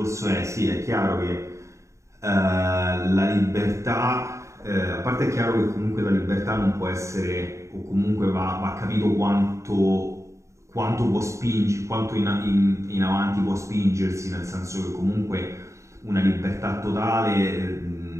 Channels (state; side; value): late; left; 0.14 ms